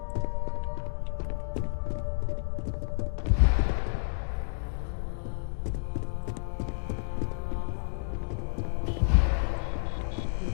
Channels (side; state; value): right; silent; digital silence